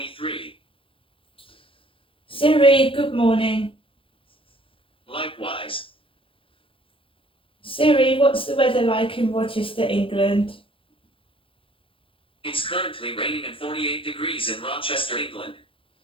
Siri, good morning. Likewise. Siri, what's the weather like in Rochester, England? It's currently raining and 48 degrees in Rochester, England.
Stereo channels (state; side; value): late; right; 0.26 ms